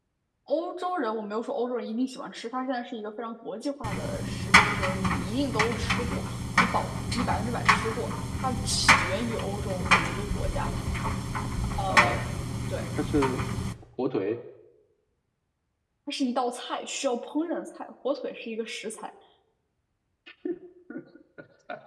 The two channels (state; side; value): identical; both; correlation 1.00